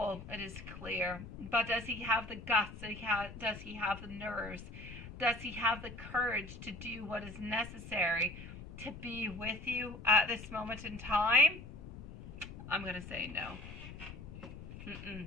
it is clear. But does he have the guts? Does he have the nerves? Does he have the courage to do what is necessary to be with you at this moment in time? I'm going to say no.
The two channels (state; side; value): noise; left; rumble, 12 dB below the sound